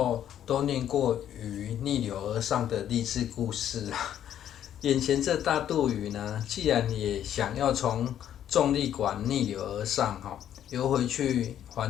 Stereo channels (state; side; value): quieter; right; 10.5 dB